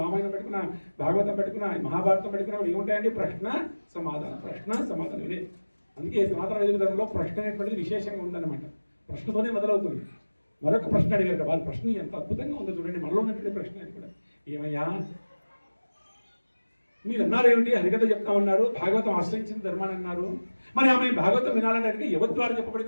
రామాయణం పెట్టుకున్నా, భాగవతం పెట్టుకున్నా, మహాభారతం పెట్టుకున్నా ఏముంటాయండి? ప్రశ్న సమాధానం ఇదే. అందుకే సనాతన వైదిక ధర్మంలో ప్రశ్న అనేటువంటిది విశేషంగా ఉందన్నమాట. ప్రశ్నతోనే మొదలవుతుంది. మరొక ప్రశ్న అడిగారు. వారి ప్రశ్న ఎంత అద్భుతంగా ఉందో చూడండి. మనలో ఉన్నటువంటి ప్రశ్న అది కూడా. ఏమయ్యా మీరు అన్నారు ఏమిటి? హరికథ చెప్తా ఉన్నారు, భాగవతం ఆశ్రయించిన ధర్మాన్ని అన్నారు. మరి ఆమె భాగవతం వినాలని అడిగి ఎవరి ద్వారా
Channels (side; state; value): both; inverted; correlation -1.00